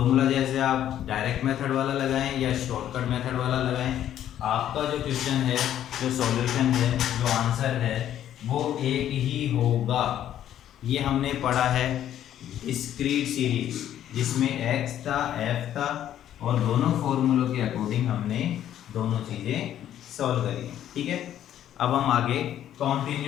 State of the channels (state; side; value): quieter; right; 11.2 dB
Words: जैसे आप डायरेक्ट मेथड वाला लगाएं या शॉर्टकट मेथड वाला लगाएं, आपका जो क्वेश्चन है, जो सॉल्यूशन है, जो आंसर है वो एक ही होगा। ये हमने पढ़ा है डिस्क्रीट सीरीज जिसमें x था f था और दोनों फॉर्मूलों के अकॉर्डिंग हमने दोनों चीज़ें सॉल्व करी। ठीक है, अब हम आगे